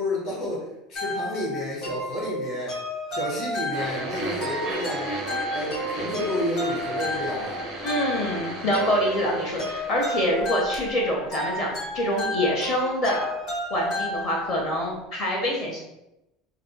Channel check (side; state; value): both; normal; correlation 0.33